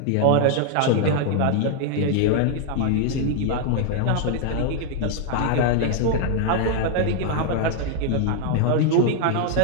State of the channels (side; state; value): both; different; correlation 0.00